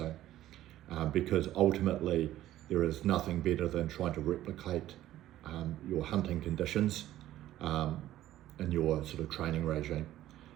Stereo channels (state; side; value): quieter; left; 13.8 dB